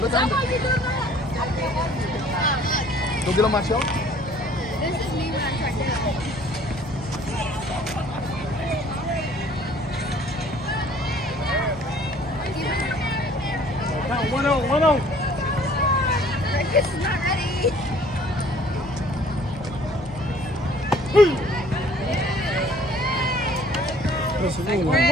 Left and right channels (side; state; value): both; normal; correlation 0.55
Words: Look under. Go get on my shelf. This is me when I'm trying to. Count 1-0, 1-0. This is not ready. Take a